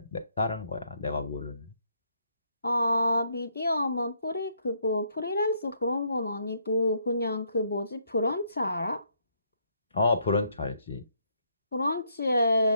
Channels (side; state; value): both; inverted; correlation -0.73